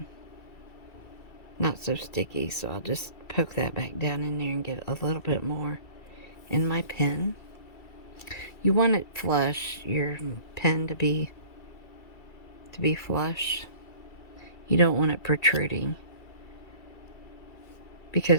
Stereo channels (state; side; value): late; right; 2.3 ms